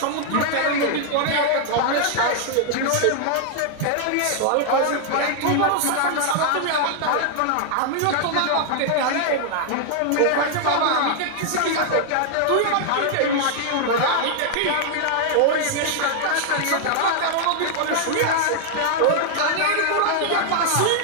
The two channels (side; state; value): both; different; correlation 0.00